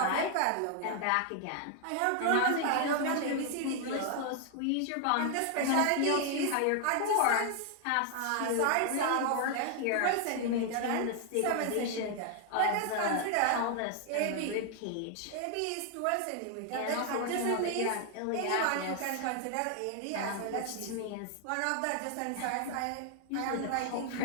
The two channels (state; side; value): different; both; correlation 0.00